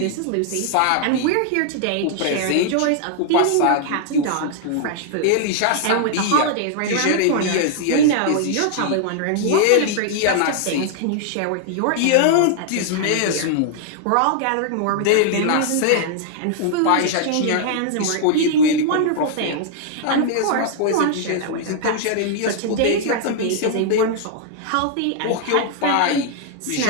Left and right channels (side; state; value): both; different; correlation -0.01